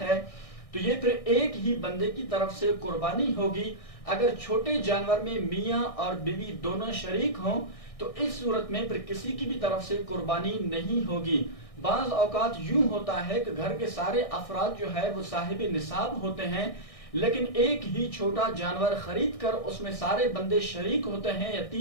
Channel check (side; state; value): right; late; 1.6 ms